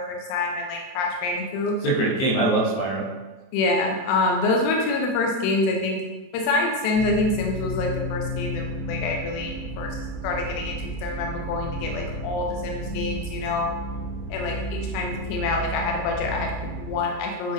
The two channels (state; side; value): late; right; 23 ms